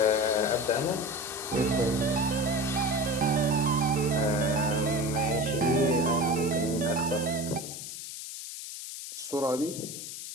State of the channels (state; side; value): noise; left; hiss, 9 dB below the sound